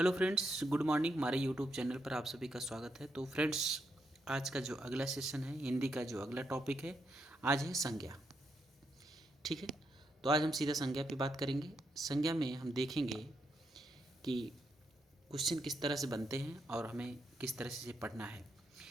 friends, good morning. हमारे YouTube channel पर आप सभी का स्वागत है। तो फ्रेंड्स, आज का जो अगला सेशन है, हिंदी का जो अगला टॉपिक है, आज है संज्ञा। ठीक है, तो आज हम सीधा संज्ञा पे बात करेंगे। संज्ञा में हम देखेंगे कि क्वेश्चन किस तरह से बनते हैं और हमें किस तरह से पढ़ना है।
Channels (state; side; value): normal; both; correlation 0.80